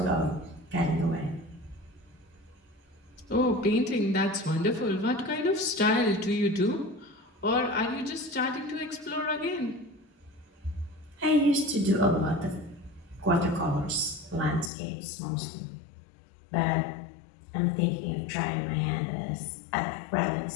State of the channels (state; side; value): drops out; right; at 14.7 s